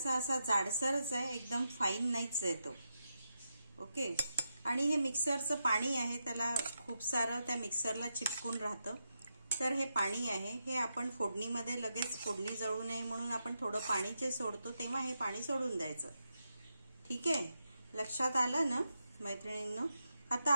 असा जाडसरच आहे, एकदम फाईन नाहीच आहे तो। ओके, आणि हे मिक्सरचं पाणी आहे, त्याला खूप सारं त्या मिक्सरला चिपकून राहतं। तर हे पाणी आहे, हे आपण फोडणीमध्ये लगेच फोडणी जळू नये म्हणून आपण थोडं पाणी जे सोडतो तेव्हा हे पाणी सोडून द्यायचं। ठीक आहे, लक्षात आलं ना मैत्रिणींनो? आता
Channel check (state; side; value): inverted; both; correlation -0.86